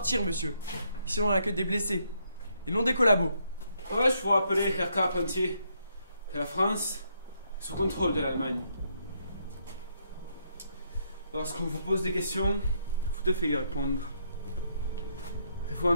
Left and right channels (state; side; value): inverted; both; correlation -0.74